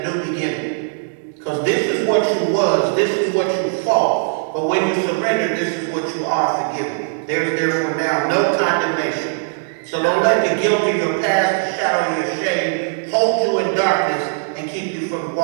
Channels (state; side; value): silent; left; digital silence